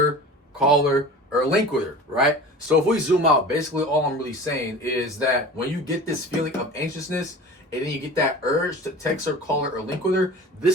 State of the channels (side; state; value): both; normal; correlation 0.37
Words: call her, or link with her, right? So if we zoom out, basically all I'm really saying is that when you get this feeling of anxiousness and then you get that urge to text her, call her, or link with her,